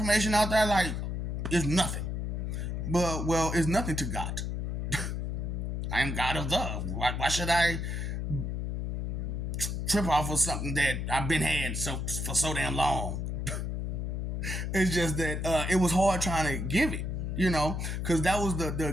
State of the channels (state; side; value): noise; left; hum, 2 dB below the sound